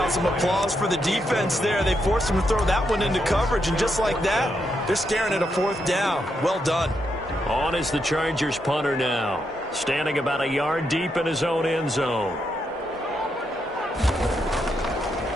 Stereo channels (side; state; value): both; normal; correlation 0.81